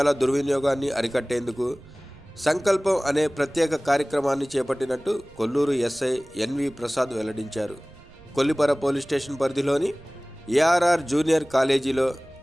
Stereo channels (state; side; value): noise; right; rumble, 24 dB below the sound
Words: దుర్వినియోగాన్ని అరికట్టేందుకు సంకల్పం అనే ప్రత్యేక కార్యక్రమాన్ని చేపట్టినట్టు కొల్లూరు ఎస్ఐ ఎన్వి ప్రసాద్ వెల్లడించారు. కొల్లిపర పోలీస్ స్టేషన్ పరిధిలోని ఏఆర్ఆర్ జూనియర్ కాలేజీలో